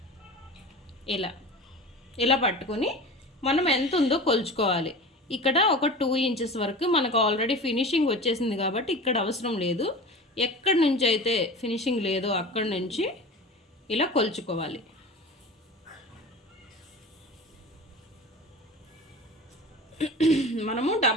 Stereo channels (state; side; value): normal; both; correlation 0.34